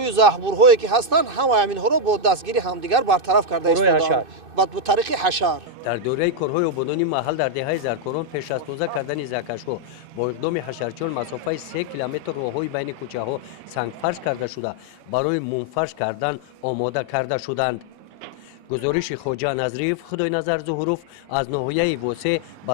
زهبورهایی که هستند همه همینها را با دستگیری همدیگر برطرف کرده ایستادند با طریق حشر. در دوره کارهای آبادانی محل در دهه زرکاران پیش از تازه کردن زهکش‌ها با اقدام حشرچیان مسافت 3 کیلومتر راههای بین کوچه‌ها سنگفرش کرده شده برای منفرش کردن آماده کرده شدند. گزارش خواجه نظریف خدای نظر ظهوروف از ناحیه وسع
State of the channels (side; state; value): left; late; 2.6 ms